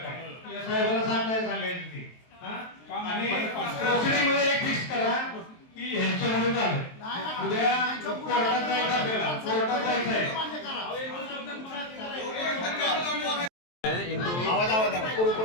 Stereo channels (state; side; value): late; right; 23 ms